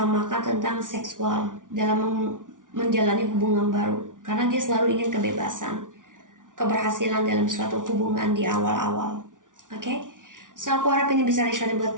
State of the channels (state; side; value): late; left; 0.88 ms